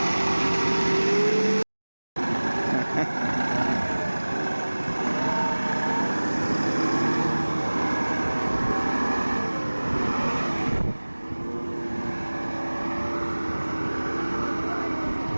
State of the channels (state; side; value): inverted; both; correlation -1.00